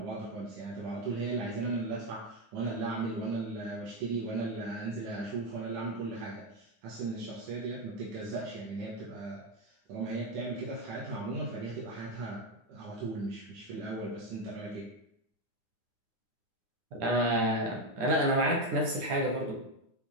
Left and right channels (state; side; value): late; left; 9.9 ms